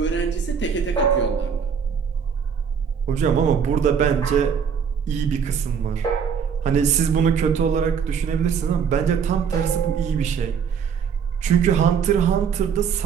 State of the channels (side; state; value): left; quieter; 6.9 dB